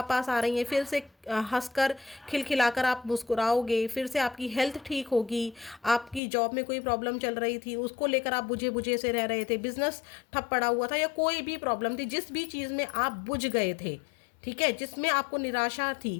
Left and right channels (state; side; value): drops out; right; at 6.2 s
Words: आ रही हैं। फिर से हंसकर खिलखिलाकर आप मुस्कुराओगे। फिर से आपकी हेल्थ ठीक होगी। आपकी जॉब में कोई प्रॉब्लम चल रही थी, उसको लेकर आप बुझे बुझे से रह रहे थे, बिजनेस ठप पड़ा हुआ था या कोई भी प्रॉब्लम थी, जिस भी चीज़ में आप बुझ गए थे, ठीक है, जिसमें आपको निराशा